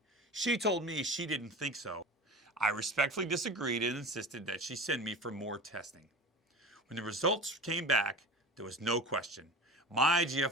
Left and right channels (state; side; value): normal; both; correlation 0.34